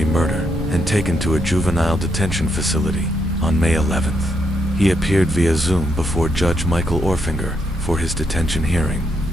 murder and taken to a juvenile detention facility. On May 11th, he appeared via Zoom before Judge Michael Orfinger for his detention hearing.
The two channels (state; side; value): normal; both; correlation 0.78